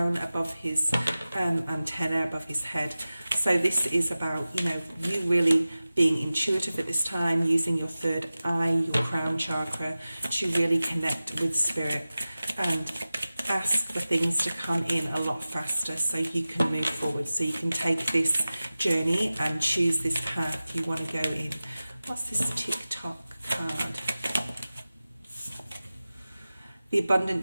above his antenna, above his head. So this is about, you know, you really being intuitive at this time, using your third eye, your crown chakra, to really connect with spirit and ask for things to come in a lot faster so you can move forward, so you can take this journey and choose this path you want to go in. What's this TikTok card? The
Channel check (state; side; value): inverted; both; correlation -0.96